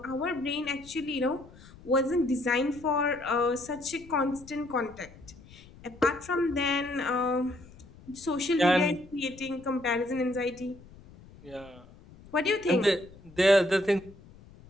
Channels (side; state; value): left; noise; rumble, 21 dB below the sound